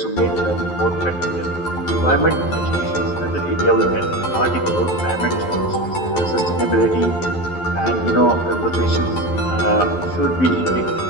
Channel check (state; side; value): late; right; 11 ms